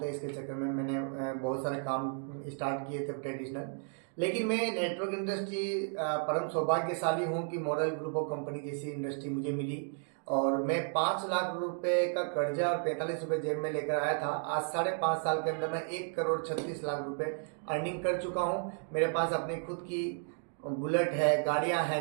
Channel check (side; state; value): left; silent; 56 dB below the other